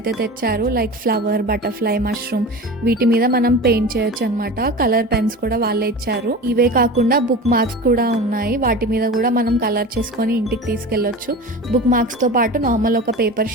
తెచ్చారు. Like flower, butterfly, mushroom. వీటి మీద మనం పెయింట్ చేయొచ్చు అనమాట. కలర్ పెన్స్ కూడా వాళ్ళే ఇచ్చారు. ఇవే కాకుండా బుక్ మార్క్స్ కూడా ఉన్నాయి. వాటి మీద కూడా మనం కలర్ చేసుకొని ఇంటికి తీసుకెళ్ళొచ్చు. బుక్ మార్క్స్ తో పాటు నార్మల్ ఒక పేపర్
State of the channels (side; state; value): both; normal; correlation 0.32